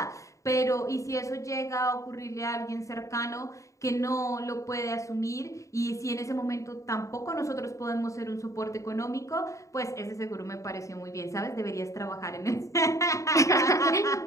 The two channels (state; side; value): late; right; 0.15 ms